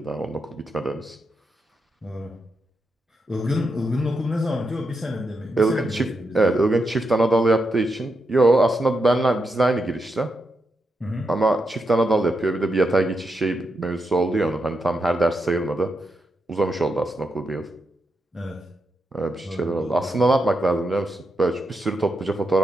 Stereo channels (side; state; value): both; normal; correlation 0.84